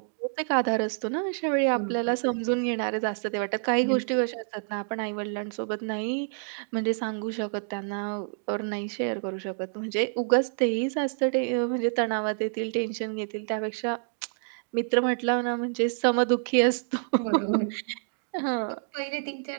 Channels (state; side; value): silent; left; digital silence